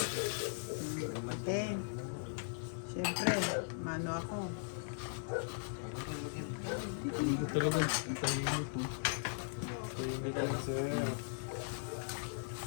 Okay. Siyempre, mano ako. Hindi ko talaga ang tahimik mo. Tahimik lang sir.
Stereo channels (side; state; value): right; silent; 52 dB below the other